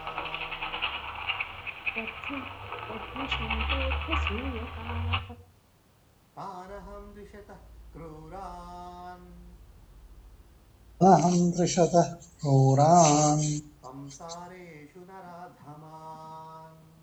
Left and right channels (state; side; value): identical; both; correlation 1.00